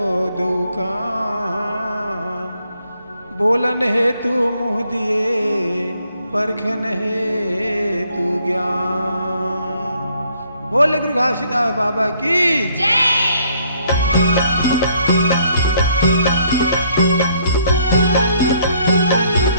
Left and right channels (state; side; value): inverted; both; correlation -0.66